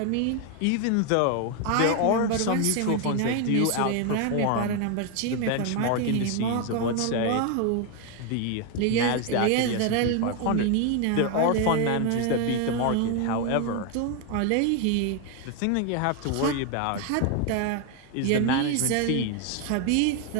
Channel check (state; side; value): different; both; correlation 0.01